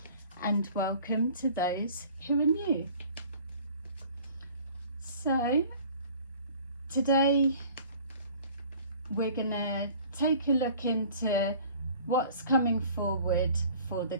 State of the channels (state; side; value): inverted; both; correlation -0.49